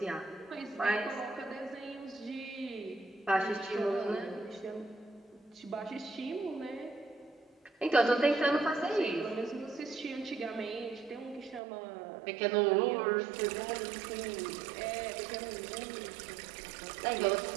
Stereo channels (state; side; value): drops out; left; at 11.6 s